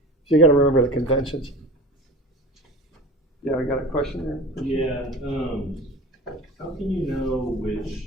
So you got to remember the conventions. Yeah, we got a question there? Yeah, how can you know which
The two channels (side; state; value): both; normal; correlation 0.36